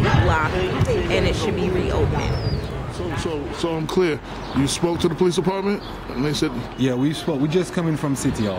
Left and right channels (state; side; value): identical; both; correlation 1.00